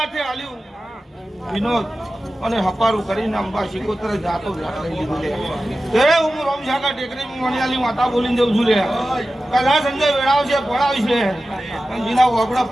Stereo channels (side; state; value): both; normal; correlation 0.94